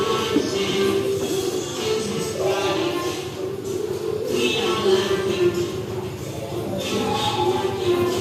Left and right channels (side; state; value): both; identical; correlation 1.00